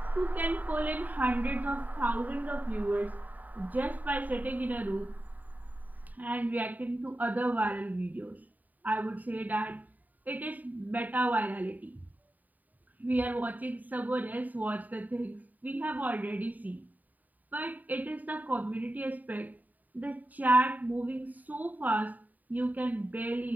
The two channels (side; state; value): left; late; 0.082 ms